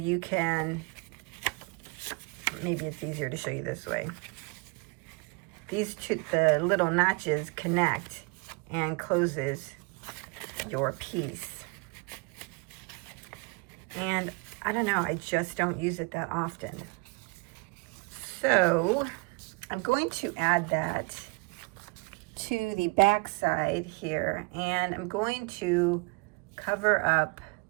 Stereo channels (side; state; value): left; quieter; 29.2 dB